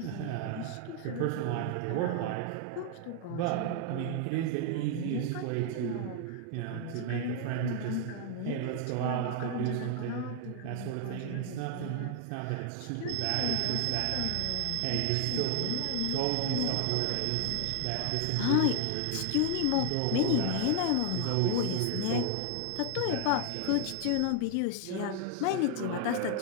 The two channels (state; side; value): different; both; correlation 0.00